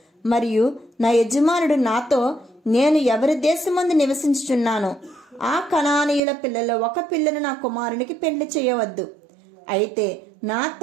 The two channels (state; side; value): drops out; left; at 6.2 s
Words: మరియు నా యజమానుడు నాతో, నేను ఎవరి దేశమందు నివసించుచున్నానో ఆ కనానీయుల పిల్లలో ఒక పిల్లను నా కుమారునికి పెళ్లి చేయవద్దు. అయితే నా